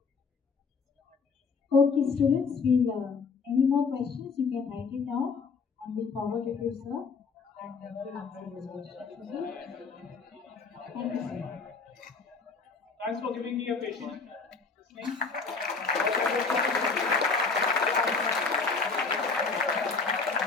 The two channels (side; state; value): right; quieter; 4.7 dB